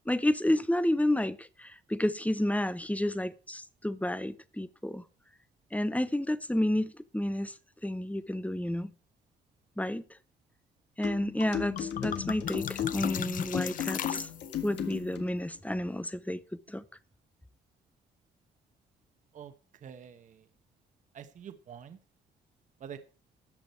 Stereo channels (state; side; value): normal; both; correlation 0.88